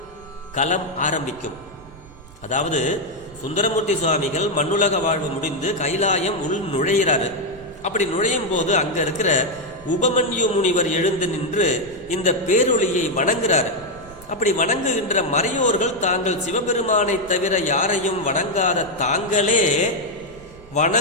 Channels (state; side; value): noise; right; rumble, 21 dB below the sound